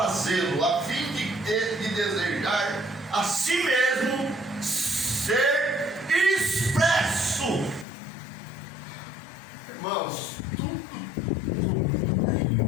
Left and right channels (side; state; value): right; drops out; at 7.9 s